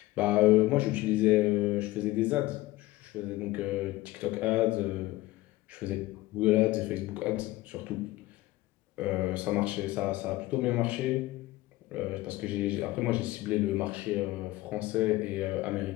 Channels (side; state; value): right; quieter; 18.2 dB